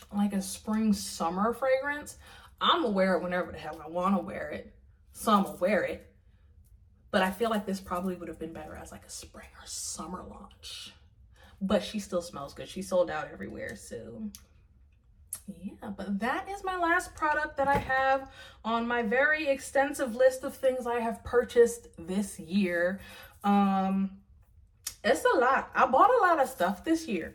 a spring summer fragrance. I'm gonna wear it whenever the hell I want to wear it, so I'm gonna wear it. But I feel like this probably would have been better as like a spring or summer launch. But she still smells good. She sold out everywhere, so yeah. But that is my last product that I have on my very extensive list of things I have purchased this year. It's a lot. I bought a lot of stuff this year.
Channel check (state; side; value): identical; both; correlation 1.00